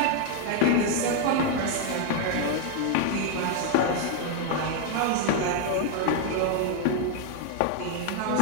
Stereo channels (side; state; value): both; different; correlation 0.00